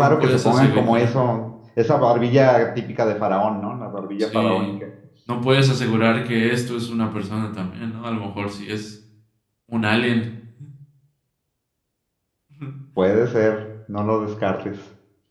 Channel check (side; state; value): both; identical; correlation 1.00